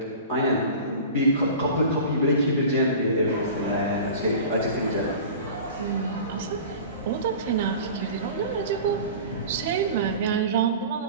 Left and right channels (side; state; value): both; inverted; correlation -0.37